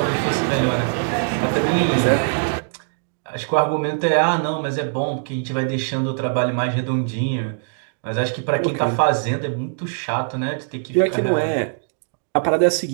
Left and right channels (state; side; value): silent; left; digital silence